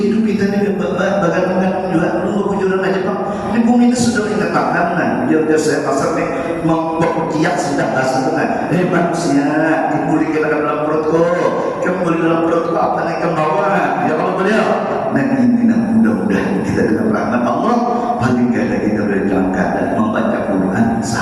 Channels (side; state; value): both; identical; correlation 1.00